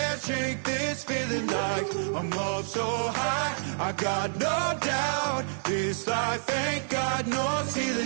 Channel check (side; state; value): left; silent; digital silence